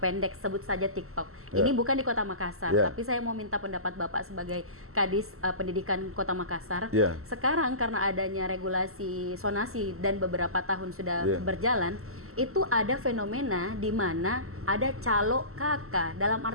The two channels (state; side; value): late; left; 0.63 ms